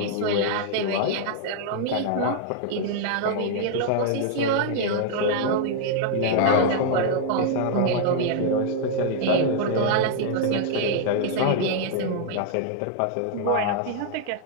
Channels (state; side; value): different; both; correlation -0.01